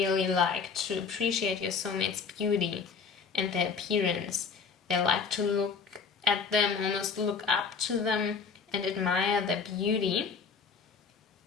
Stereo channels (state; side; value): quieter; right; 5.7 dB